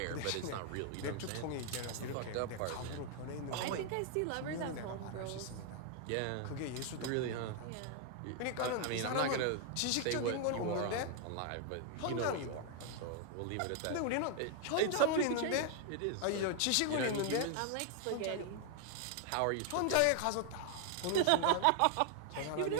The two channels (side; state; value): both; different; correlation 0.00